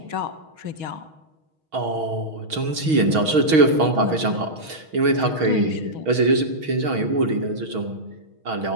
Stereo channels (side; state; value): left; late; 6.3 ms